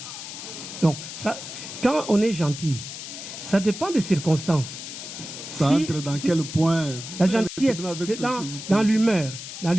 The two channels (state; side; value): noise; left; hiss, 10 dB below the sound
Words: Donc, ça, quand on est gentil, ça dépend des circonstances. Ça entre dans quel point? La gentillesse, dans l'humeur. Dans